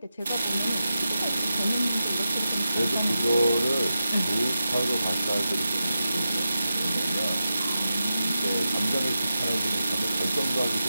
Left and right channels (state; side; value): inverted; both; correlation -0.91